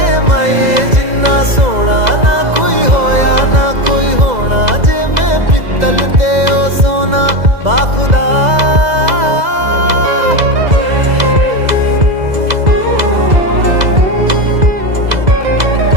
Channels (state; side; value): late; left; 2.0 ms